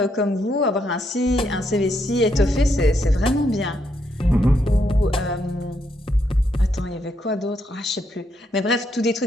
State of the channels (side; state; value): both; normal; correlation 0.77